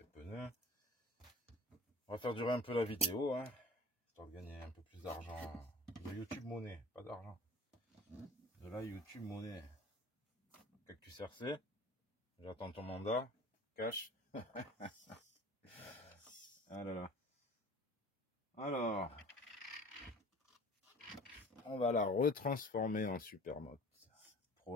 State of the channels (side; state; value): both; normal; correlation 0.44